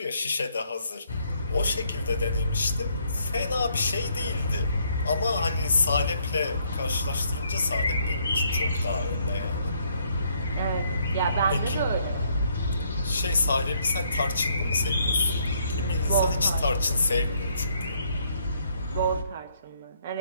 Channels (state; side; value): inverted; both; correlation -0.69